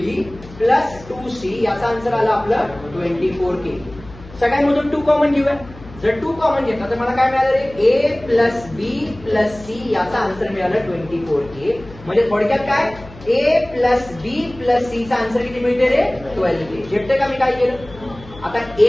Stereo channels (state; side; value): noise; left; hum, 19 dB below the sound